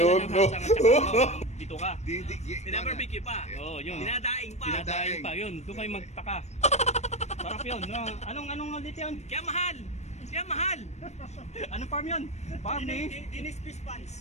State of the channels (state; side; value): late; right; 0.32 ms